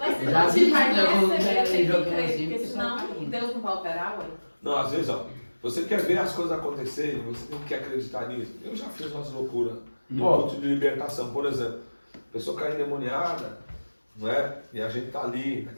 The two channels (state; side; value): inverted; both; correlation -1.00